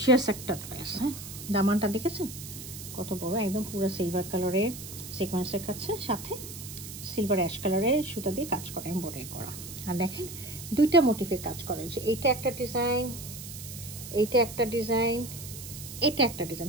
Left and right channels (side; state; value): right; noise; hiss, 11 dB below the sound